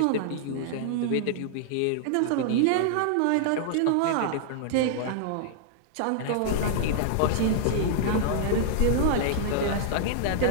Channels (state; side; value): different; both; correlation -0.01